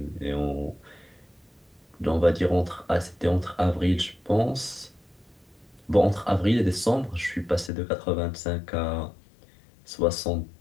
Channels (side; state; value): right; drops out; at 7.7 s